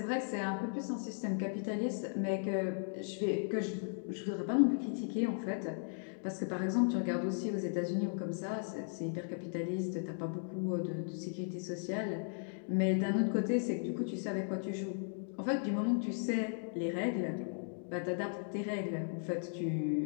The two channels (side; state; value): right; silent; digital silence